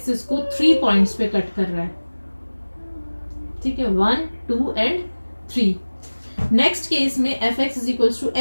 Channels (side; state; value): both; inverted; correlation -1.00